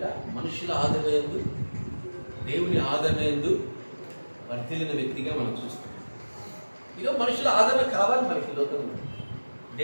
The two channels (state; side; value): inverted; both; correlation -1.00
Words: మనుషుల ఆదరణ యందు, దేవుని ఆదరణ యందు వర్ధిల్లిన వ్యక్తిగా మనం చూస్తాం. ఈరోజు మనుషుల ఆదరణ కావాలి మనకి లోకంలో.